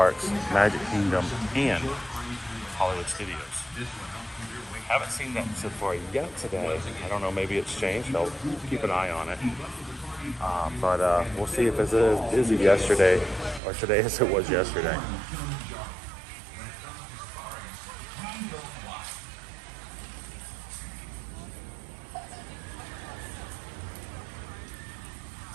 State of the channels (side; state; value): left; drops out; at 13.6 s